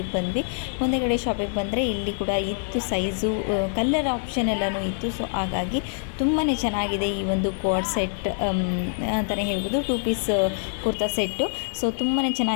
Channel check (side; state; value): right; silent; digital silence